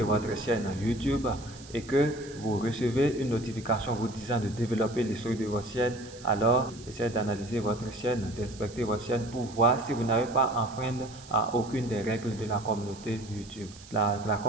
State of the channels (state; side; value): noise; right; hiss, 19 dB below the sound